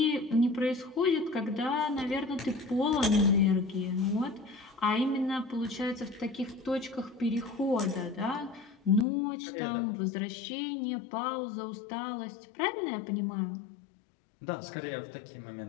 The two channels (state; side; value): drops out; right; at 9.1 s